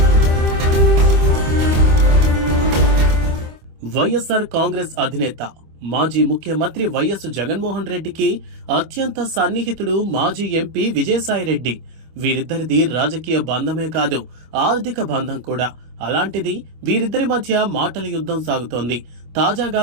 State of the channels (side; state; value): left; late; 25 ms